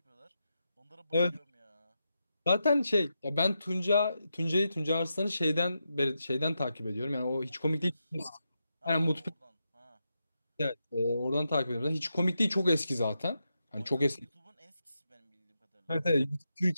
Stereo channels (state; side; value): inverted; both; correlation -0.86